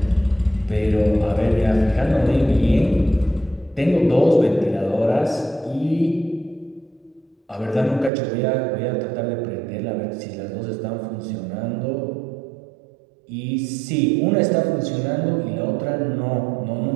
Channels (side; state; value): left; drops out; at 8.1 s